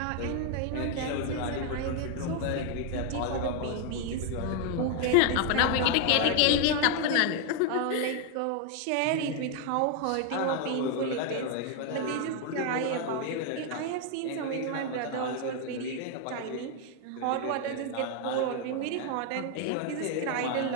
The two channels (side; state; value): both; different; correlation 0.00